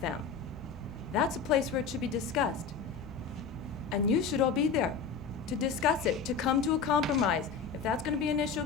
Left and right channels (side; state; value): right; quieter; 5.6 dB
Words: them. That's a place where it should be discussed. And you should all be there to discuss it, to come to a compromise. If that's going to be an